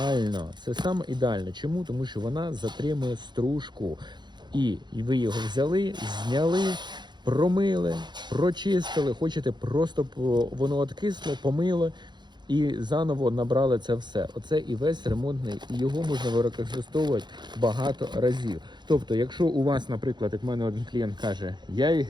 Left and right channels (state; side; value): late; left; 0.21 ms